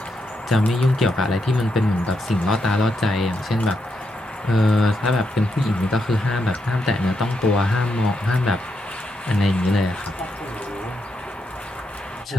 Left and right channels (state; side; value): normal; both; correlation 0.81